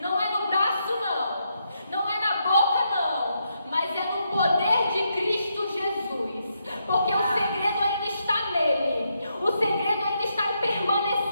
é no braço não. Não é na boca não. Mas é no poder de Cristo Jesus. Porque o segredo ainda está nele. O segredo ainda está em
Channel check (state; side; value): inverted; both; correlation -0.80